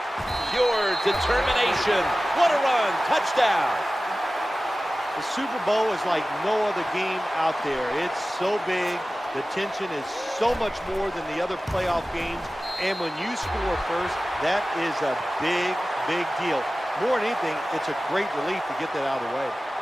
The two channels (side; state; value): both; normal; correlation 0.96